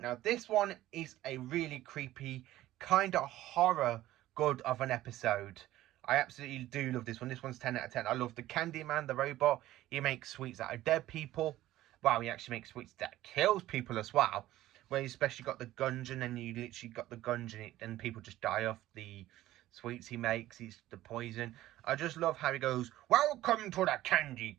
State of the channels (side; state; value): left; quieter; 15.0 dB